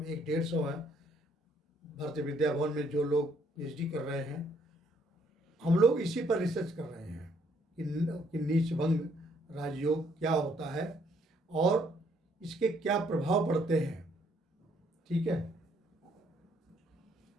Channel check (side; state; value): both; normal; correlation 0.67